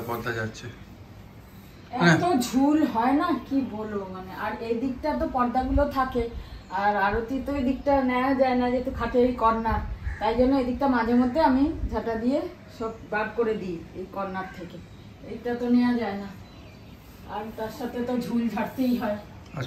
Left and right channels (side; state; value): both; identical; correlation 1.00